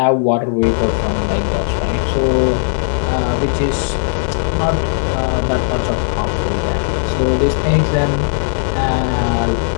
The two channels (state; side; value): silent; right; digital silence